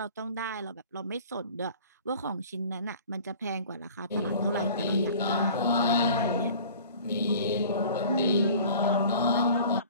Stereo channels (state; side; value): inverted; both; correlation -0.46